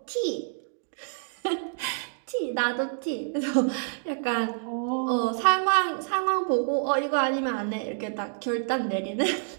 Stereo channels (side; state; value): left; silent; digital silence